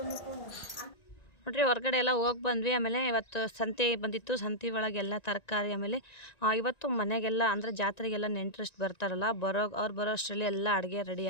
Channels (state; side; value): late; right; 1.9 ms